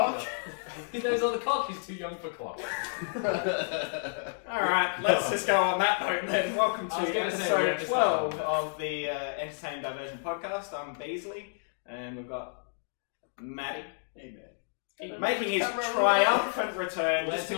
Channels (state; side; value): silent; right; digital silence